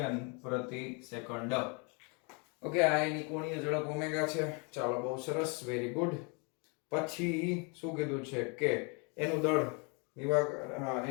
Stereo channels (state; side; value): quieter; right; 33.5 dB